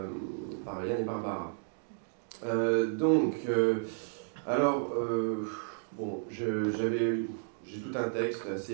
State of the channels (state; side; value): silent; left; digital silence